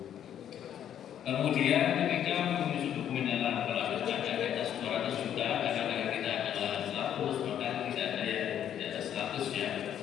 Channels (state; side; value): quieter; right; 10.0 dB